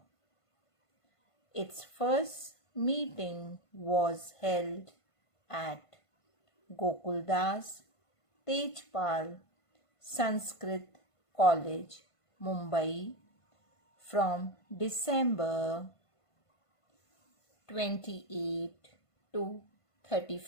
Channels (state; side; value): late; right; 1.5 ms